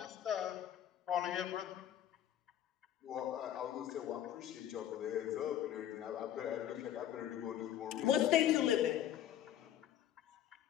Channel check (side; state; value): right; quieter; 11.3 dB